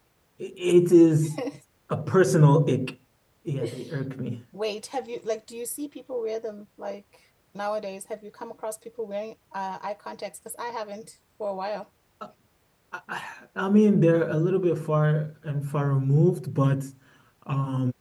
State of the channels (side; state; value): both; identical; correlation 1.00